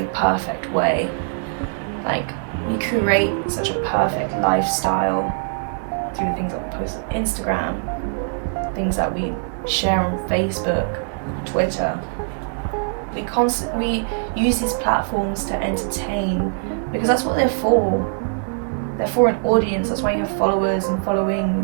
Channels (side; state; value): left; silent; digital silence